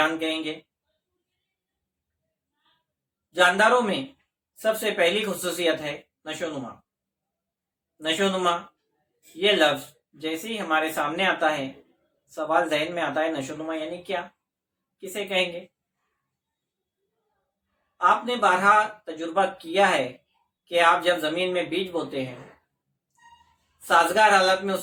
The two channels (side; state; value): both; identical; correlation 1.00